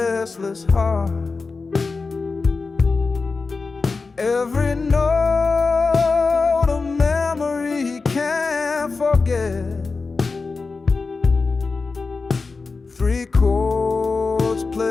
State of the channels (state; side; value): quieter; right; 4.2 dB